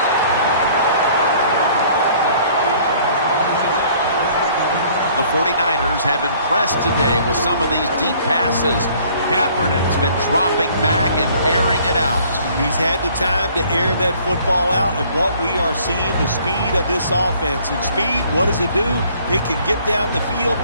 The 49ers have impressed today with some of these deep passes. Kaepernick's been dropping back and airing it out. He's had the time to air that football out, and what we are seeing, the speed of this offense. And speed, what does it do? It can get down the field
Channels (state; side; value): inverted; both; correlation -0.57